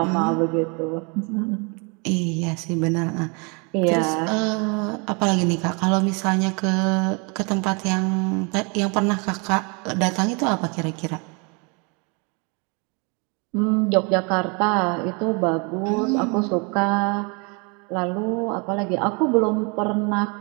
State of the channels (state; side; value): quieter; left; 32.5 dB